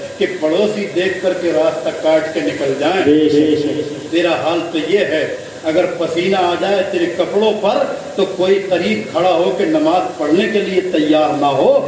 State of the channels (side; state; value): both; identical; correlation 1.00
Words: کہ پڑوسی دیکھ کر کے راستہ کاٹ کے نکل جائیں۔ تیرا حال تو یہ ہے، اگر پسینہ آ جائے تیرے کپڑوں پر تو کوئی قریب کھڑا ہو کے نماز پڑھنے کے لیے تیار نہ ہو،